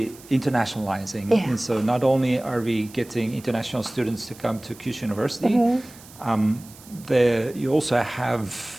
internationalizing. Yeah. And so not only are we getting international students to come to Kyushu University, you also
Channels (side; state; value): right; noise; hiss, 21 dB below the sound